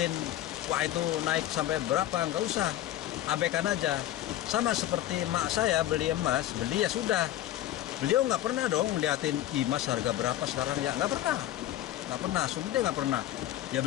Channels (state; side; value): quieter; right; 13.5 dB